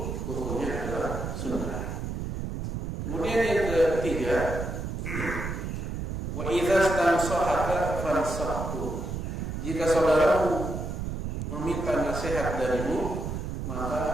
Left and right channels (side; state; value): right; noise; rumble, 4 dB below the sound